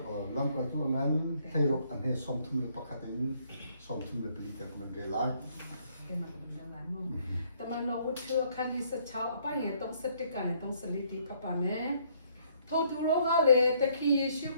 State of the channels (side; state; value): both; inverted; correlation -0.66